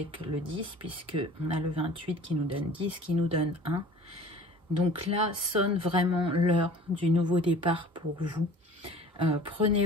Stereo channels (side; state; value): both; normal; correlation 0.45